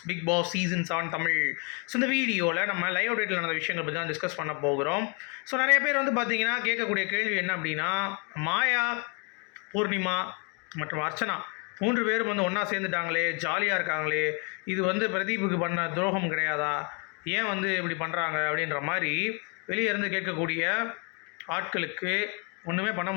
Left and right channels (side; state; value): right; quieter; 34.8 dB